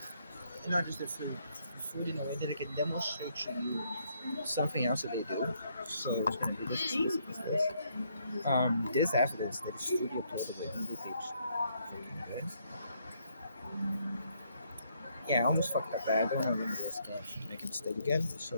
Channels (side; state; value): both; inverted; correlation -0.72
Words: Not just the food. The food in a way that I can demonstrate to you something else that they do. So it's gonna be this. This evidence that is studio uploaded in the page. Freaking good. Yeah, I almost fucked up that. I don't want to remember this game to make a mistake again. So